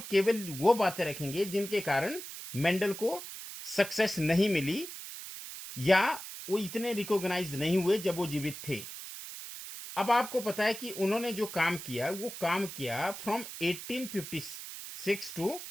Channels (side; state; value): right; noise; hiss, 10 dB below the sound